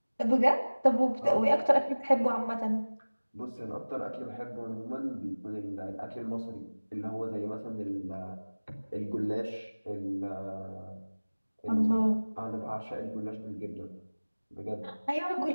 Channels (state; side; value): inverted; both; correlation -1.00